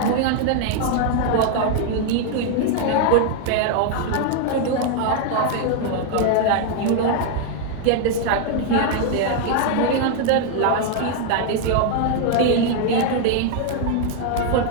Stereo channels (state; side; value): different; both; correlation 0.00